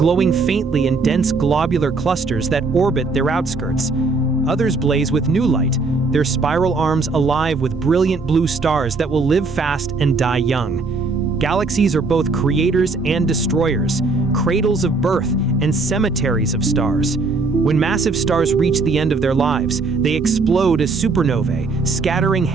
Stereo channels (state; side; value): quieter; left; 3.9 dB